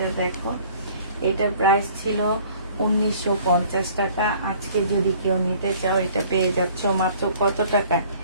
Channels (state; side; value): inverted; both; correlation -0.54